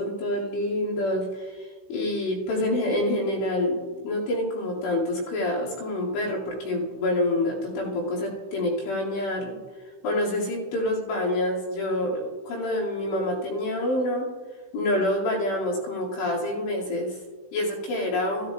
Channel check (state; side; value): late; right; 16 ms